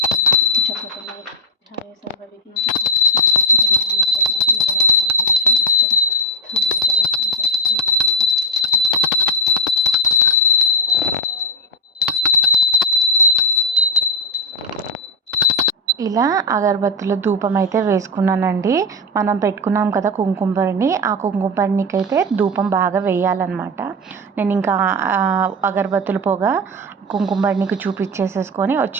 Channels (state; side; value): normal; both; correlation 0.09